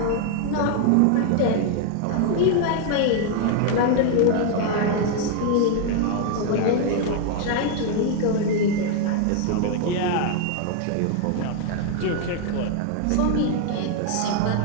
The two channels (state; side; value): different; both; correlation 0.00